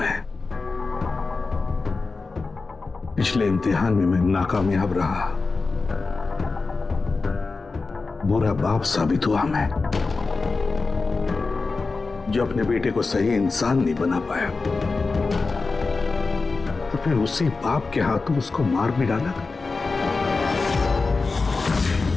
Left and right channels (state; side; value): quieter; right; 4.0 dB